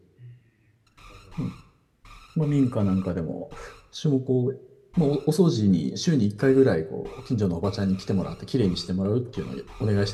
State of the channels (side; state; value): both; identical; correlation 1.00